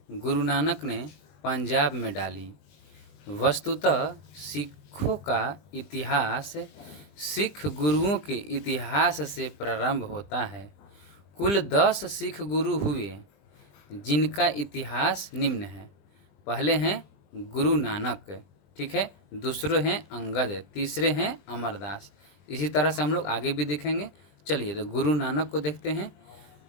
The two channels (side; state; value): right; late; 20 ms